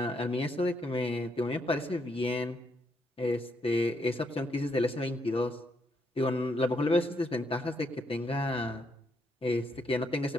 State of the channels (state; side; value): normal; both; correlation 0.76